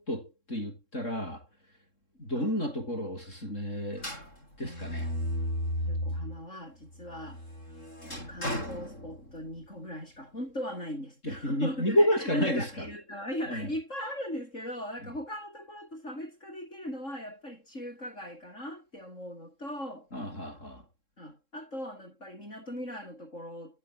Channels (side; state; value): right; late; 3.7 ms